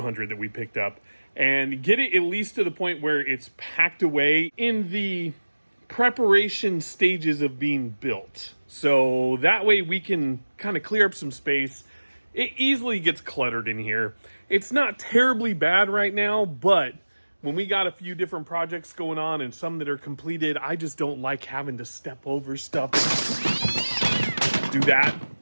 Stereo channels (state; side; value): inverted; both; correlation -1.00